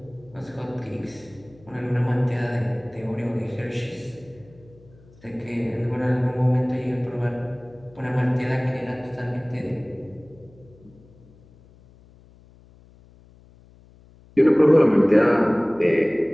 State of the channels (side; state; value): left; noise; hum, 26 dB below the sound